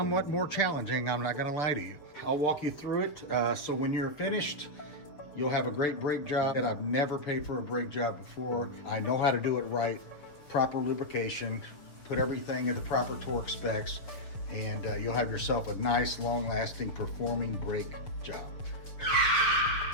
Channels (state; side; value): late; right; 6.5 ms